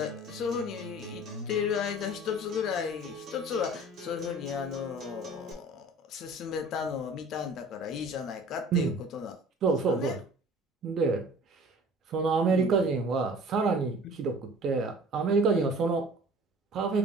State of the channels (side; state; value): both; normal; correlation 0.46